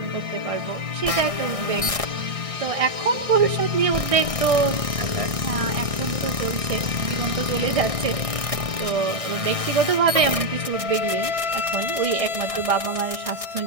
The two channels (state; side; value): late; left; 1.6 ms